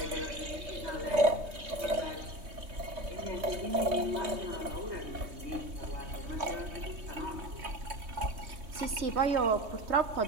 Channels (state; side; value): late; left; 3.2 ms